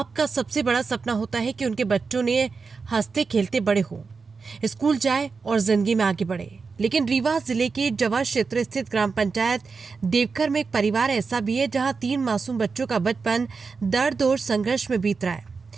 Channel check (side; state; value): left; quieter; 4.8 dB